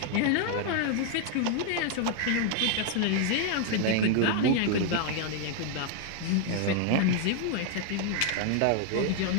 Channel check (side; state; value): both; different; correlation 0.00